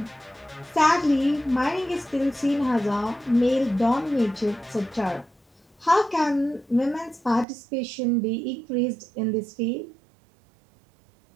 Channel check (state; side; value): drops out; left; at 7.5 s